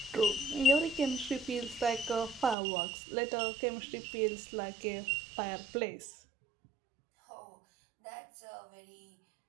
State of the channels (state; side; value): drops out; left; at 2.6 s